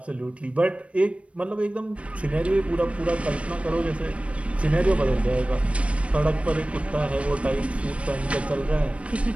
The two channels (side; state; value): left; late; 0.062 ms